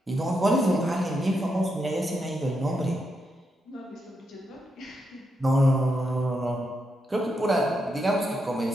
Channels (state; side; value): normal; both; correlation 0.83